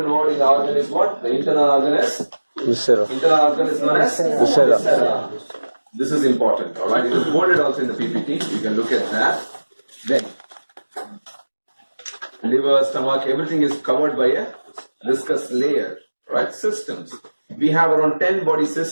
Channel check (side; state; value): both; inverted; correlation -1.00